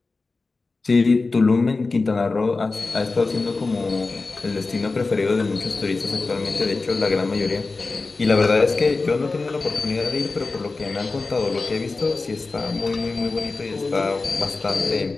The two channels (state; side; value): quieter; right; 3.7 dB